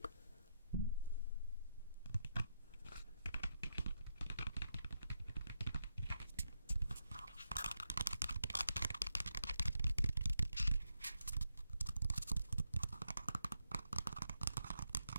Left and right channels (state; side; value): inverted; both; correlation -0.83